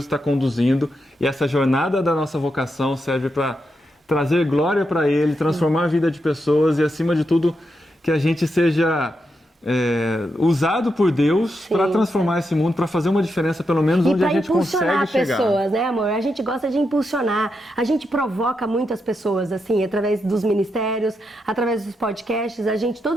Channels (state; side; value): normal; both; correlation 0.84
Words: está conduzindo e essa jornada da nossa vocação serve para trazer glória para Ele, transformar a vida de pessoas e, acima de tudo, que a gente seja... usado por Deus para transformar esse mundo, para fazer uma diferença pelo menos onde a gente consegue chegar. E para impulsionar pessoas, né, amor? A gente gosta de impulsionar, a gente provoca muitas pessoas, assim, através dos ministérios, através dos podcasts,